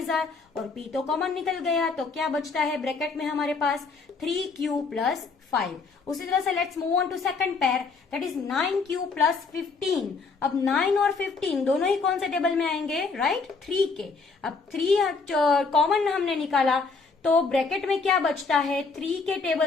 और p तो कॉमन निकल गया, तो क्या बचता है ब्रैकेट में हमारे पास 3q प्लस 5। उसी तरह से let's move on to second pair, that is 9q plus 15। अब 9 और 15 दोनों ही कौन से टेबल में आएंगे, राइट 3 के। अब 3 कॉमन हमने निकाला तो ब्रैकेट में क्या बचता है, 3 के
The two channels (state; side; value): quieter; right; 4.5 dB